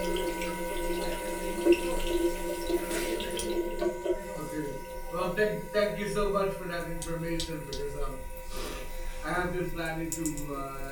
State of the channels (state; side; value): identical; both; correlation 1.00